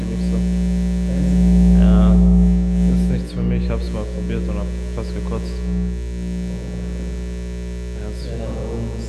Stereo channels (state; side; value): identical; both; correlation 1.00